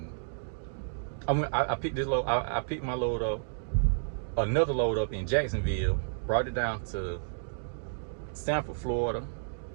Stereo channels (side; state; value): left; silent; digital silence